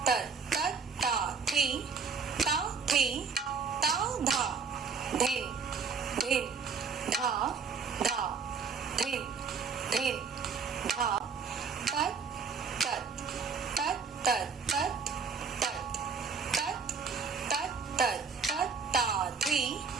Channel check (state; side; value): quieter; left; 5.5 dB